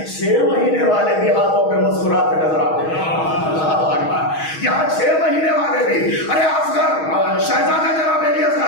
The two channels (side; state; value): right; late; 6.3 ms